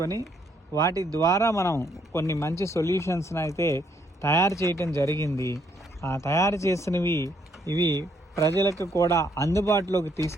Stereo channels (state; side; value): normal; both; correlation 0.70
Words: వాటి ద్వారా మనం కొన్ని మంచి సొల్యూషన్స్ని అయితే తయారు చేయటం జరిగింది. ఆ తయారు చేసినవి ఇవి ప్రజలకు కూడా అందుబాటులోకి